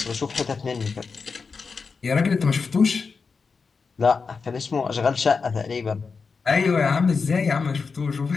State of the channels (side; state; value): right; quieter; 5.0 dB